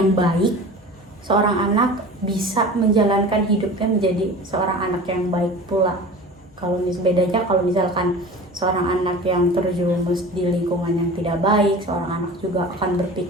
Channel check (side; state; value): both; normal; correlation 0.37